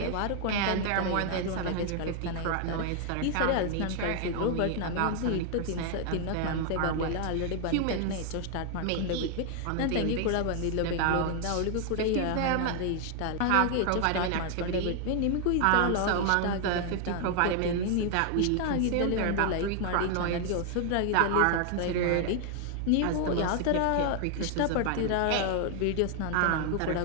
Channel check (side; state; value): both; different; correlation 0.00